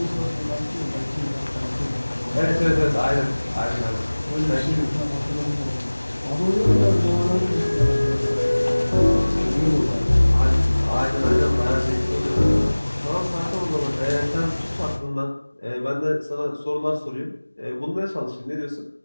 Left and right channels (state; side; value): inverted; both; correlation -1.00